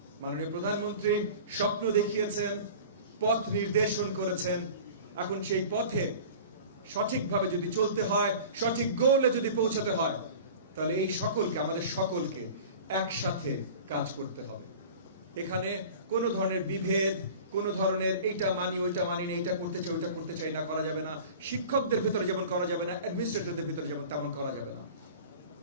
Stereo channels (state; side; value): inverted; both; correlation -0.40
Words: মাননীয় প্রধানমন্ত্রী স্বপ্ন দেখিয়েছেন, পথ নির্দেশন করেছেন। এখন সেই পথে সঠিকভাবে যদি চলতে হয়, সঠিক গোলে যদি পৌঁছাতে হয়, তাহলে এই সকলকে, আমাদের সকলকে একসাথে কাজ করতে হবে। এখানে কোনো ধরনের বিভেদ, কোনো ধরনের এইটা মানি ওইটা মানি না, এইটা করতে চাই ওইটা করতে চাই না করা যাবে না। শিক্ষকদের ভিতরে যেমন করা যাবে না, অ্যাডমিনিস্ট্রেটরদের ভিতরে যেমন তেমন করা যাবে না।